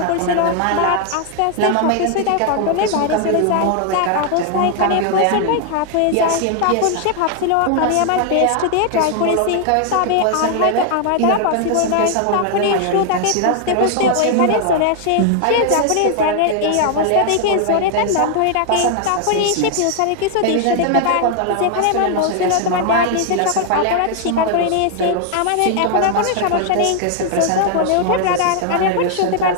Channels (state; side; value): different; both; correlation 0.00